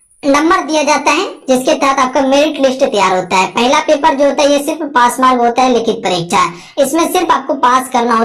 नंबर दिया जाता है, जिसके तहत आपका मेरिट लिस्ट तैयार होता है। पहला पेपर जो होता है ये सिर्फ पास मार्क होता है, लिखित परीक्षा, इसमें सिर्फ आपको पास करना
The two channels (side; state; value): both; identical; correlation 1.00